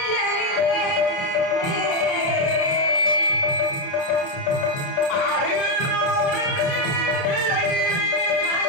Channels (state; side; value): late; right; 30 ms